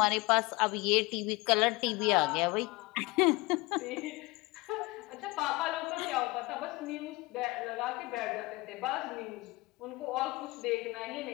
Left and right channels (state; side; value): quieter; right; 23.4 dB